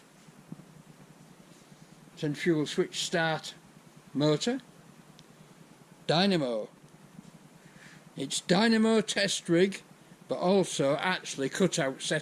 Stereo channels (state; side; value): identical; both; correlation 1.00